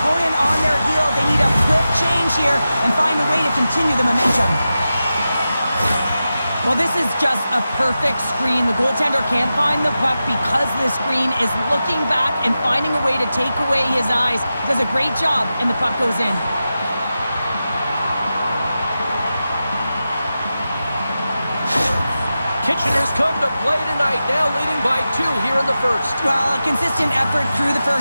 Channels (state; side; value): inverted; both; correlation -0.92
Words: on their heel. They need a quick change here and find a way to continue the momentum. Well, this is just a perfect screen. The goaltender can't find the puck because the screen is looking back and finding a way to take away his eyes. He does a great job, and the puck goes in. Kitchener's come to play tonight, now leading by 2 here in the first. Well, a consistent effort through the